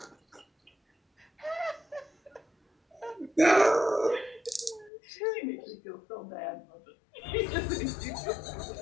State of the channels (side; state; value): right; drops out; at 4.9 s